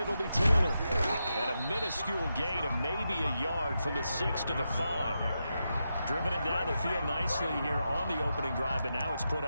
be Taylor. And a minuscule gain of maybe a yard from the 6 to the 5. Driven it down the field nicely here on the opening drive, but now it's put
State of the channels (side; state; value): both; inverted; correlation -0.87